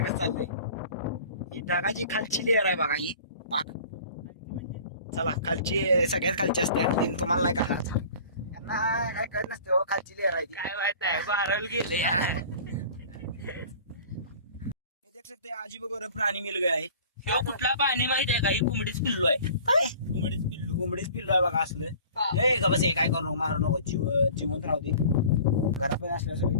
कसं चाललंय ही ढगाची खालची लेअर आहे बघा ही पाक चला खालची सगळ्यात खालची असते आणि तुम्हाला नाही कळणार त्यांना काय कळत नसते हो खालची लेअर आहे ती काय माहित आहे बाराल गेले देख सकते अजीब गरीब प्राणी मिल गया आहे किंवा कुठला पाणी माहिती आहे का ही कोंबडीच पिल्लू आहे काय कोंबडीच पिल्लू आहे बघा असलं हे का बस हे काय करू नको मारू नको जिवंत राहू दे घरामध्ये असल्या सगळी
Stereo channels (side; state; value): both; inverted; correlation -0.45